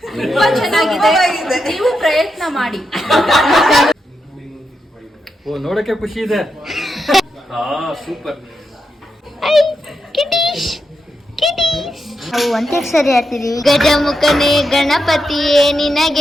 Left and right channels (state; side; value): normal; both; correlation 0.85